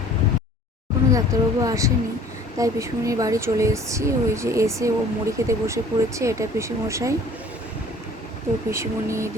কোনো ডাক্তারবাবু আসেনি, তাই পিসমনির বাড়ি চলে এসেছি। ওই যে এসে ও মুড়ি খেতে বসে পড়েছে, এটা পিসিমশাই। তো পিসিমণি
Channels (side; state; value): both; normal; correlation 0.50